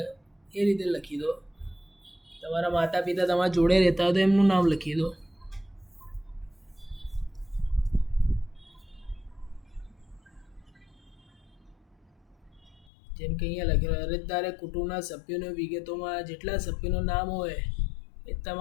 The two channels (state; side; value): drops out; right; at 12.9 s